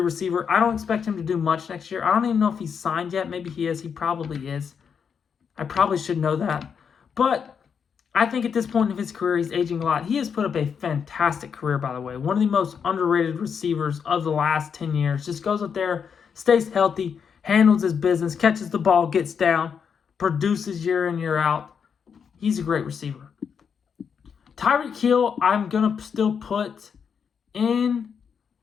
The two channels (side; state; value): right; quieter; 6.8 dB